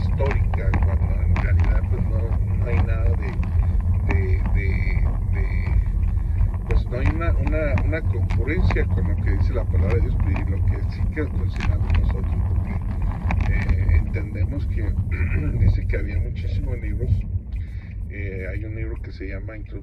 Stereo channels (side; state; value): both; identical; correlation 1.00